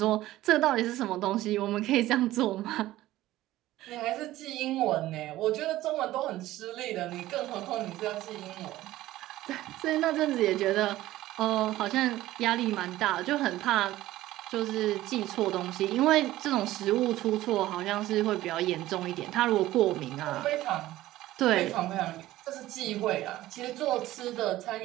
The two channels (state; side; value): quieter; left; 15.6 dB